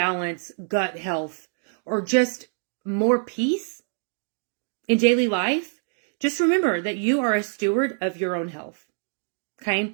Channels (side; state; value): left; silent; 61 dB below the other